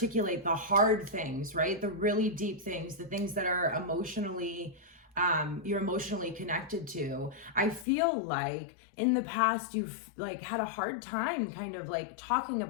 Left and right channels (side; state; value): right; drops out; at 7.9 s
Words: the hard things, right? The really deep things, the things that are emotionally you're emotionally connected to. I feel like in the past you've had a hard time kind of talking